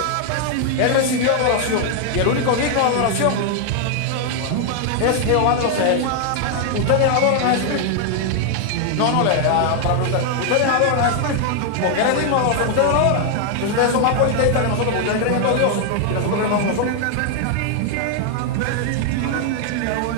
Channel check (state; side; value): different; both; correlation 0.00